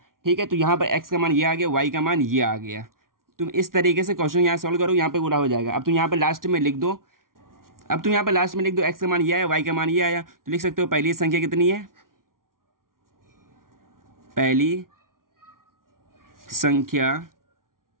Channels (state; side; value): late; left; 0.91 ms